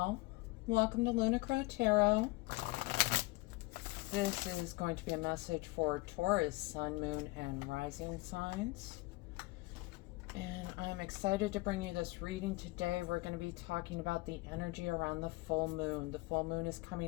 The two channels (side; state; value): right; quieter; 22.3 dB